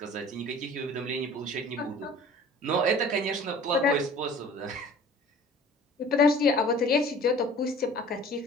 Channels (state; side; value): normal; both; correlation 0.46